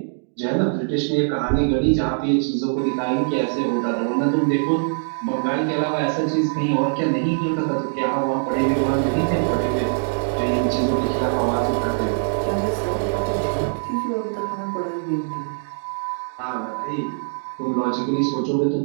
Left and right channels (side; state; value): left; silent; digital silence